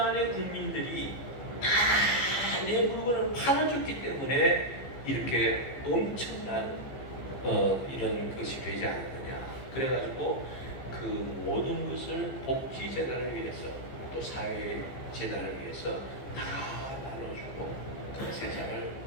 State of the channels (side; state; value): right; late; 15 ms